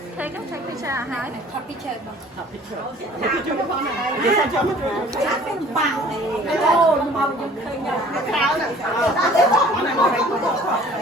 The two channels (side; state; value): both; normal; correlation 0.50